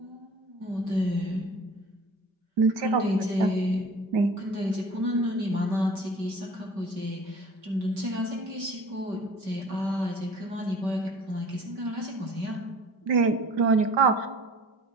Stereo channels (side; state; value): left; late; 5.1 ms